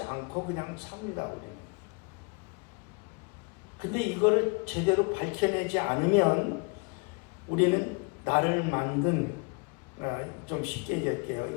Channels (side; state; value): right; quieter; 32.8 dB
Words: 않고 그냥 삽니다, 우리는. 근데 이거를 제대로 밝혀내지 않으면 우리는 나를 만든, 좀 쉽게 얘기할게요.